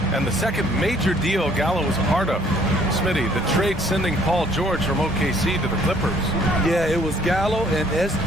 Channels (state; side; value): normal; both; correlation 0.60